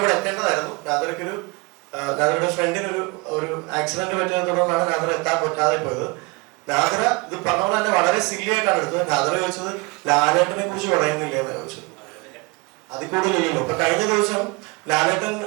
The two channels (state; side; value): quieter; left; 27.5 dB